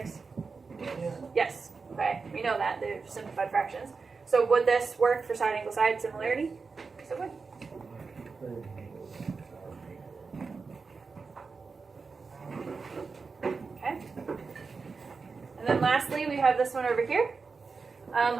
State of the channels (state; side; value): quieter; left; 4.7 dB